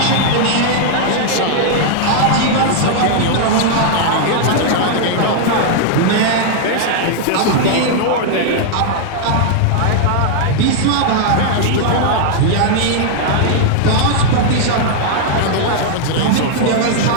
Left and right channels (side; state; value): both; different; correlation -0.01